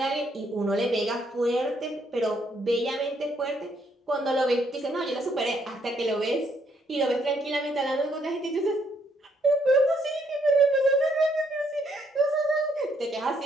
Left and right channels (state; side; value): normal; both; correlation 0.71